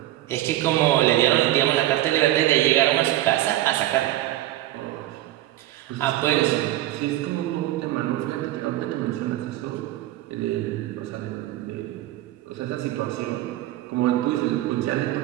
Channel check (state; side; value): quieter; left; 15.1 dB